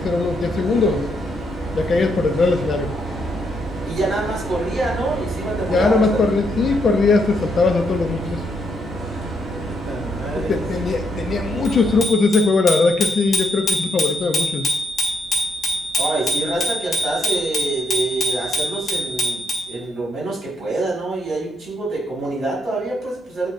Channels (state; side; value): normal; both; correlation 0.76